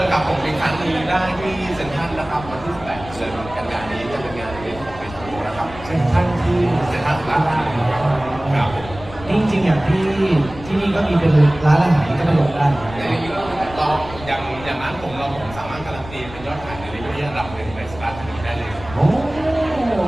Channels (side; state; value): left; noise; rumble, 15 dB below the sound